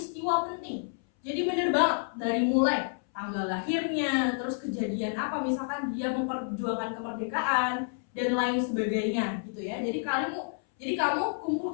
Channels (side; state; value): right; silent; 58 dB below the other